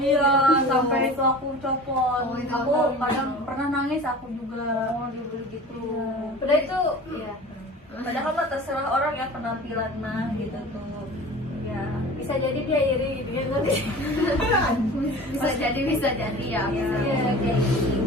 gitu. sampai itu aku copot. Oh, itu Aku aku kadang pernah nangis aku juga. Oh, dibully gitu. Iya. Padahal itu ya. Padahal mah terserah orang ya penampilan mah gitu tuh. Ya, bisa jadi dia iri gitu ya kan. bisa jadi ya. Iya, kayak gini.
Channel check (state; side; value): normal; both; correlation 0.39